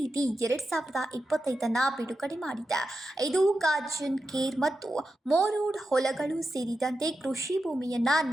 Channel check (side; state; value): both; normal; correlation 0.89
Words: 2025 ಬಿಡುಗಡೆ ಮಾಡಿದೆ. ಇದು ಕಾಜನ್ ಕೇರ್ ಮತ್ತು ಮೋರೋಡ್ ಹೊಲಗಳು ಸೇರಿದಂತೆ ಕೃಷಿ ಭೂಮಿಯನ್ನ